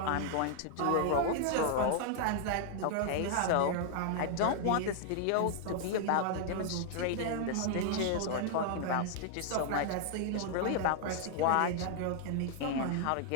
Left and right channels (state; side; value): different; both; correlation -0.01